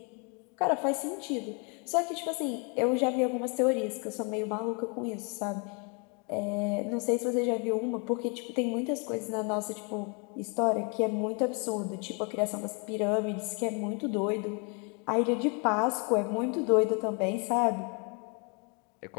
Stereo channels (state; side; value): quieter; right; 35.1 dB